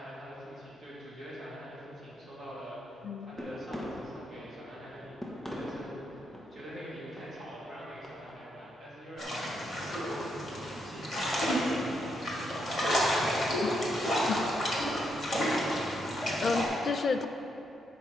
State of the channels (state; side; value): normal; both; correlation 0.79